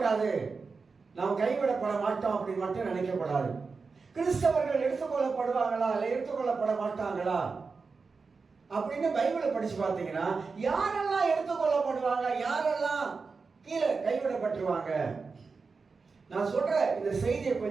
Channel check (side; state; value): left; quieter; 4.6 dB